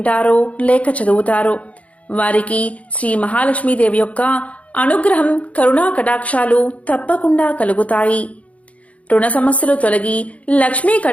లేక చదువుతారో వారికి శ్రీ మహాలక్ష్మీదేవి యొక్క అనుగ్రహం, కరుణా కటాక్షాలు తప్పకుండా కలుగుతాయి. రుణ సమస్యలు తొలగి లక్ష్మీ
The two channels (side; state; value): right; late; 0.066 ms